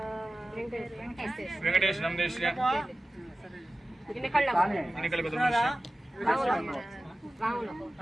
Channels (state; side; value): normal; both; correlation 0.96